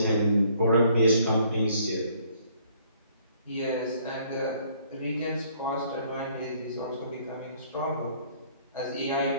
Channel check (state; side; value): inverted; both; correlation -0.62